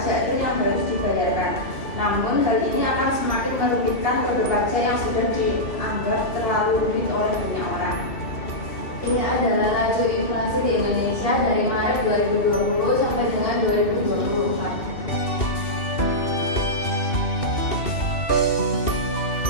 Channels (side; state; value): right; late; 2.7 ms